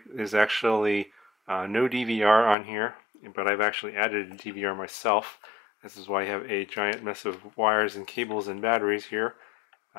There's actually no DVR on here, but I've actually added a DVR myself. This is why I have a giant mess of wires and cables and batteries here.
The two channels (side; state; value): right; drops out; at 2.6 s